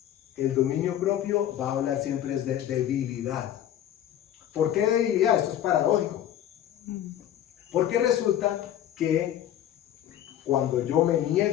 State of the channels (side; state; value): right; quieter; 11.3 dB